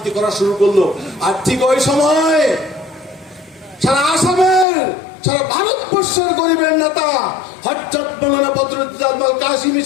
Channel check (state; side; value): drops out; right; at 4.7 s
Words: করা শুরু করলো। আর ঠিক ওই সময় সারা আসামের, সারা ভারতবর্ষের গরিবের নেতা হযরত মাওলানা বদরুদ্দোজা আজমল কাসিমি